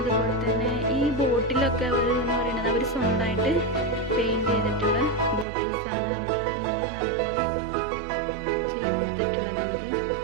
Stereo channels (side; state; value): left; drops out; at 5.5 s